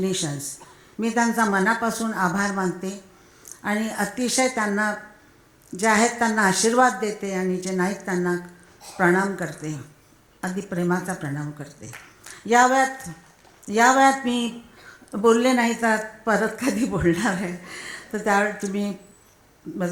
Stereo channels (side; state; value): both; identical; correlation 1.00